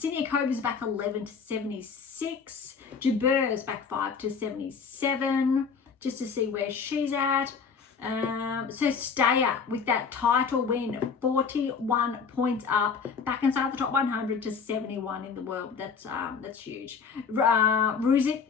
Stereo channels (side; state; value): right; quieter; 5.8 dB